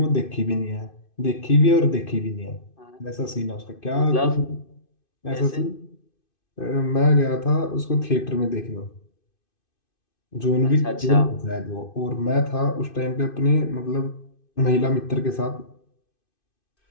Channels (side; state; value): right; late; 2.5 ms